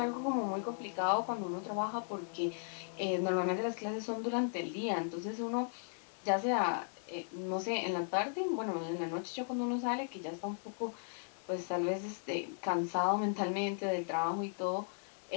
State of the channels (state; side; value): silent; right; digital silence